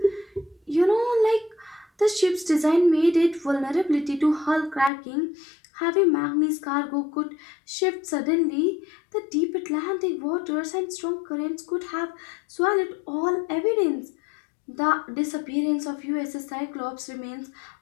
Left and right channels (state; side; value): drops out; right; at 4.9 s